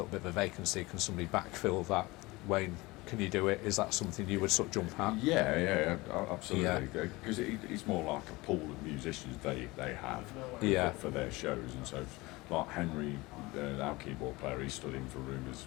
bit of a vacancy, can somebody backfill that? Wayne, can you do it? Is that something you would sort of jump at? Yeah, absolutely. Because it's more like a pool of musicians they have for their shows. And so, like Henry, our keyboard player, he stood in for Rumours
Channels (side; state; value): right; quieter; 22.0 dB